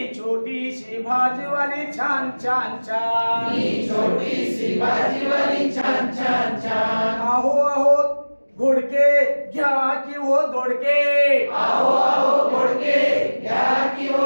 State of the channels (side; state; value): both; inverted; correlation -1.00